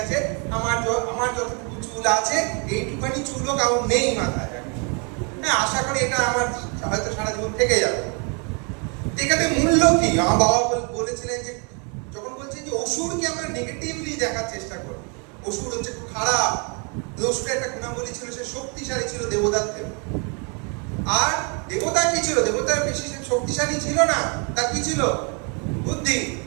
আমার যতটুকু চুল আছে এইটুখানি চুলও কারণ নেই মাথায়। হ্যাঁ, আশা করি এটা আমার হয়তো সারা জীবন থেকে যাবে। এখানে মূল্য কি? আমার বাবা বলেছিলেন যে যখন বলছেন যে অসুরকে আমরা নেগেটিভলি দেখার চেষ্টা করি, অসুর হচ্ছে খারাপ, অসুরের একটা গুণাবলী ছিল, সে শক্তিশালী ছিল দেবতার থেকে। আর দেবতা কি ছিল? দেবতার বেশি শক্তিশালী ছিল না, তার কি ছিল? বুদ্ধি।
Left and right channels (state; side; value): quieter; left; 35.6 dB